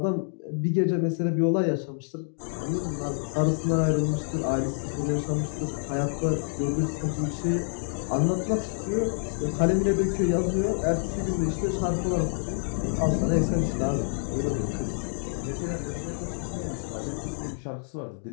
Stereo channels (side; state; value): right; silent; 60 dB below the other